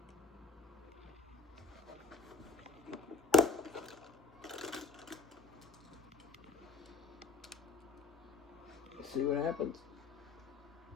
Let's see what happens.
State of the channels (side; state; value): right; quieter; 3.6 dB